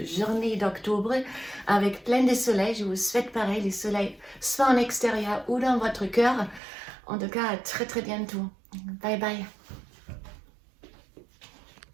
d'octobre avec plein de soleil. Je vous souhaite pareil, le soleil soit en extérieur ou dans votre cœur. En tout cas, à très bientôt. Bye bye.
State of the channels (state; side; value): drops out; left; at 6.6 s